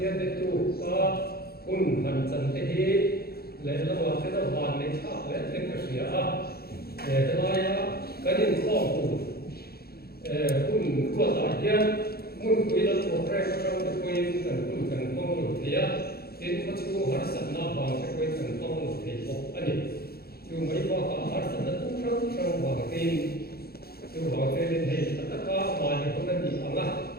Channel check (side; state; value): right; late; 0.45 ms